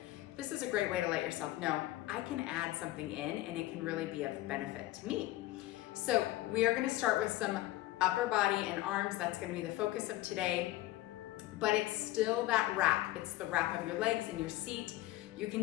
This is a great way to let yourself know, I can add something in and it can really be of benefit to me. So we are going to start with some upper body and arms. That's going to be the focus of today, but it's still that wrap. It's the wrap of your legs in your seat. You can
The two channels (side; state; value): right; quieter; 16.5 dB